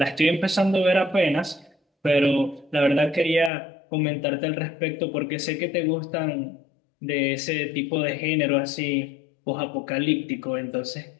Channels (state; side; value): drops out; right; at 3.5 s